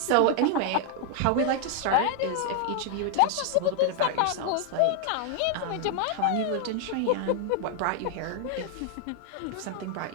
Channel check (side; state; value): both; different; correlation 0.00